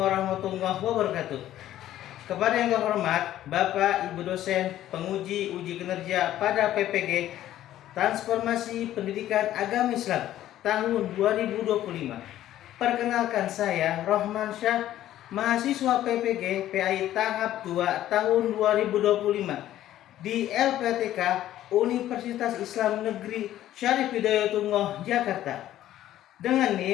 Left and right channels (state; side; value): quieter; right; 13.0 dB